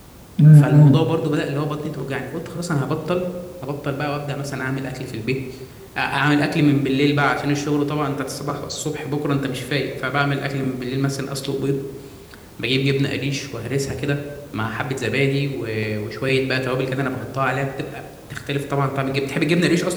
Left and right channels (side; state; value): both; identical; correlation 1.00